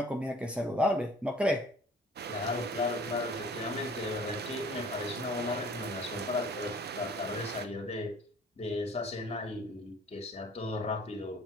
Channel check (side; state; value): both; normal; correlation 0.51